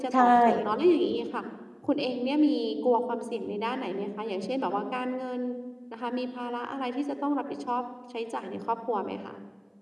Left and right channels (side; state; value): both; identical; correlation 1.00